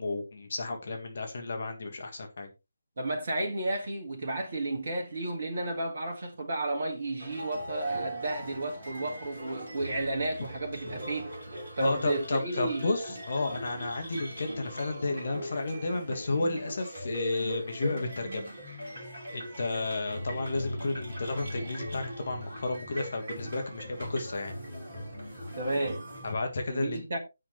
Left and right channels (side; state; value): both; inverted; correlation -0.85